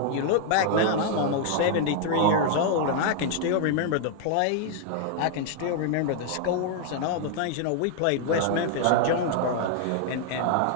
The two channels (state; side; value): different; both; correlation 0.00